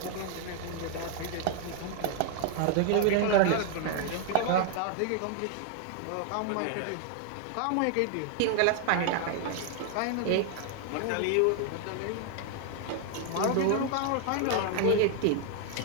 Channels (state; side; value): different; both; correlation 0.00